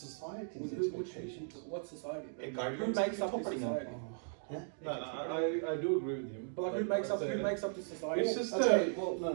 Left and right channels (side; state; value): left; silent; digital silence